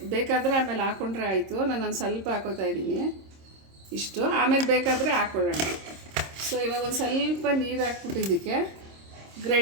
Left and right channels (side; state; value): left; late; 26 ms